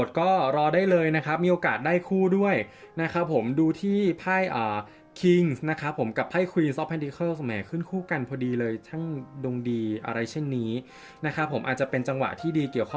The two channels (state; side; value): identical; both; correlation 1.00